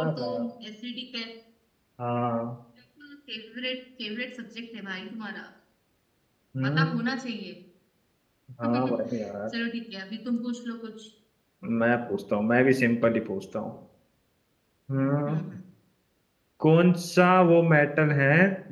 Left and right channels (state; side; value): identical; both; correlation 1.00